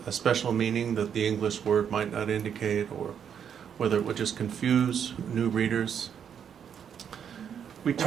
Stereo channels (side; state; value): left; quieter; 8.1 dB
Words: a special meaning that the English word might not indicate, or whether it would just confuse new readers. We